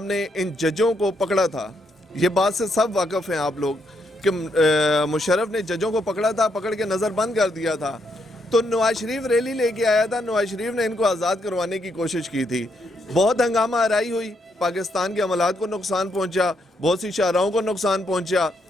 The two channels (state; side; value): normal; both; correlation 0.76